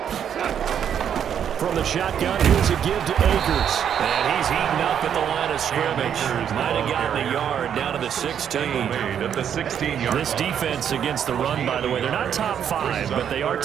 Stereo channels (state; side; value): quieter; left; 8.7 dB